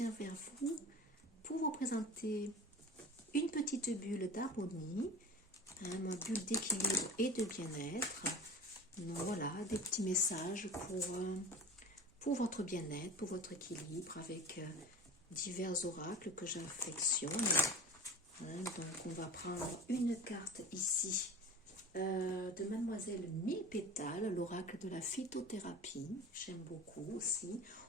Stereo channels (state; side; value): normal; both; correlation 0.36